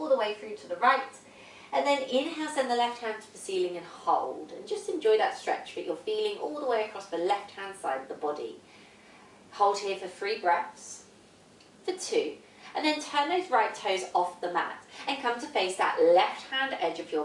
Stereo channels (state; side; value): identical; both; correlation 1.00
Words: the way through to the right, and then inhale, send the left hand to the ceiling and hold, and just enjoy that stretch that you're feeling all the way across the left hand side of the body. Hold here for 3 breaths, for 2, and then turn those right toes off the mat and come to face that left hand edge of your